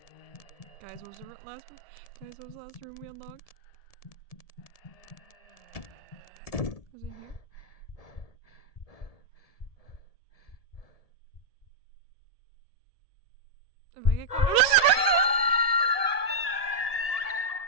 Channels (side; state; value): right; late; 1.7 ms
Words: Guys, what was the last room? Guys, what was the last room we unlocked? Was it here? If I get caught.